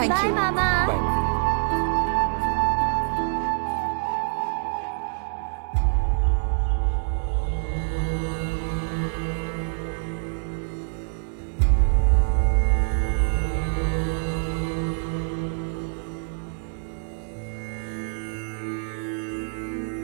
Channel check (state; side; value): silent; left; 61 dB below the other